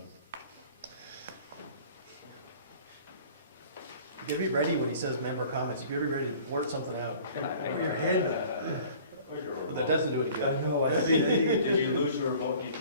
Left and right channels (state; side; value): inverted; both; correlation -0.49